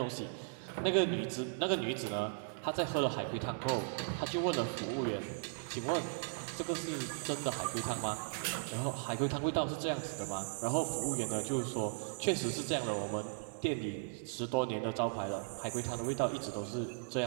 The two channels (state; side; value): silent; left; digital silence